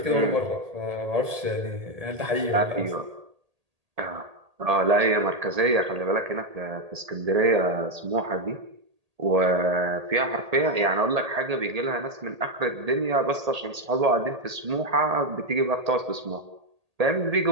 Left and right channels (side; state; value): left; late; 1.8 ms